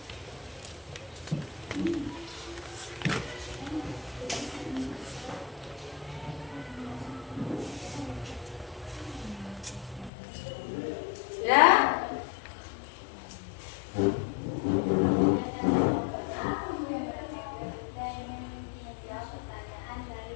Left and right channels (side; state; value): right; drops out; at 10.1 s